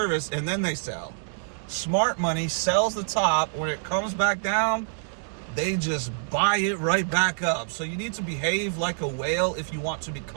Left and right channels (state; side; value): silent; left; digital silence